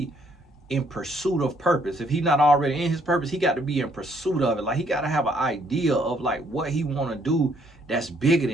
in pursuit of purpose. If he's not already in his purpose, he got to be in pursuit of it. Like he got to have an idea of like what he want to do that's bigger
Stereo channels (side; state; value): both; normal; correlation 0.67